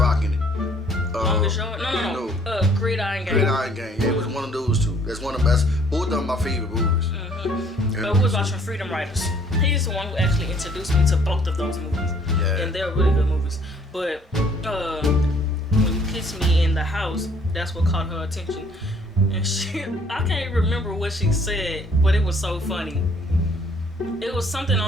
in it? Longest Yard? No. Gridiron Gang. Gridiron Gang. Yeah, it was one of those two. That's one of the best. Both of them my favorite movies. But we was watching Freedom Riders. He's the one who actually introduced me to both of those movies. Yeah. And they're really good movies. But when you kissed me in the house, that's what caught her attention. And I can't remember what she said, but it was so funny. It was something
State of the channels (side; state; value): both; normal; correlation 0.60